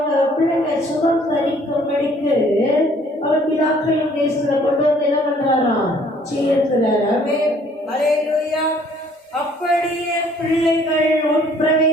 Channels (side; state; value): both; normal; correlation 0.59